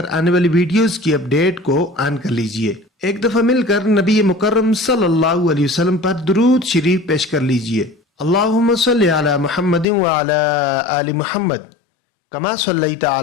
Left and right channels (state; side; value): drops out; right; at 9.9 s